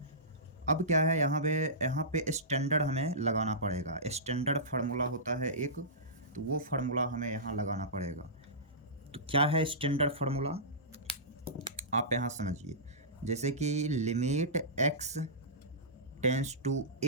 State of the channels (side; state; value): both; normal; correlation -0.20